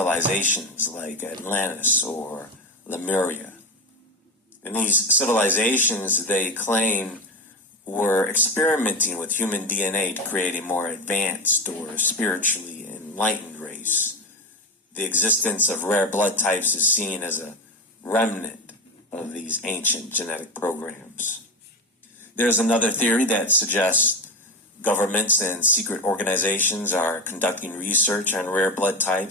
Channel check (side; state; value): both; normal; correlation 0.19